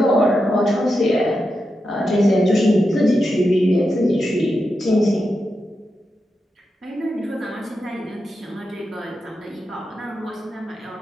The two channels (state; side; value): normal; both; correlation 0.88